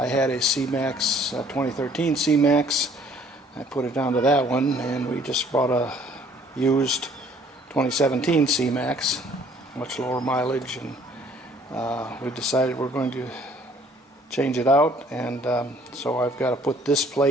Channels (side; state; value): both; normal; correlation 0.58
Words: had a Cmax, 2013 Cmax. I put it down to that one, and we just bought a used 2017 Cmax, much lower mileage, and we decided we're going to change it out, and so I've got to put this